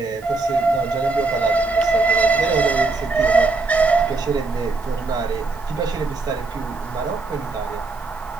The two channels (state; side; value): quieter; left; 3.6 dB